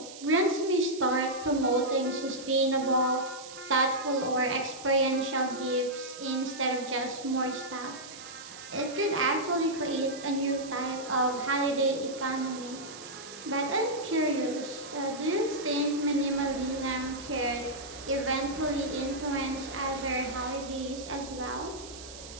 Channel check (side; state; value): right; noise; hiss, 14 dB below the sound